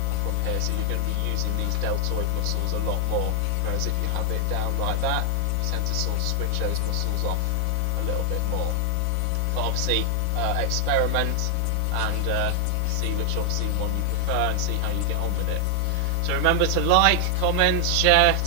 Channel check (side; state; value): both; different; correlation 0.00